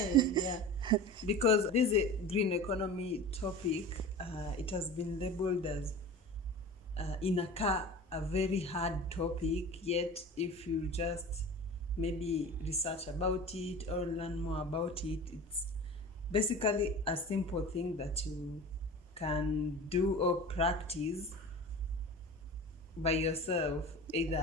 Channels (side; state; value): both; normal; correlation 0.35